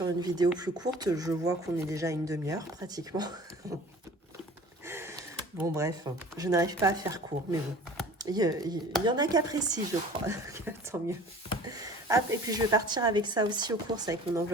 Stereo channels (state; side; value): normal; both; correlation 0.44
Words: une vidéo plus courte. Je vois qu'on est déjà à une demi-heure pratiquement. Bon, bref, je n'arrive pas à faire court, mais bon. Il y en a qui apprécient, je crois. Tant mieux. Hop, et puis je vais partir avec ça aussi aux courses, avec mon